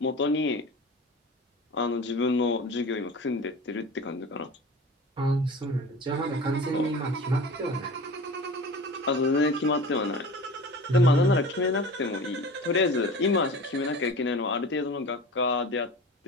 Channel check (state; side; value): normal; both; correlation 0.36